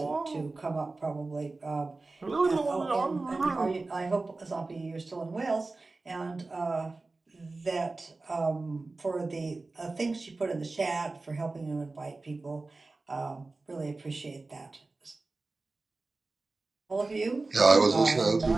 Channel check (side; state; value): left; quieter; 3.4 dB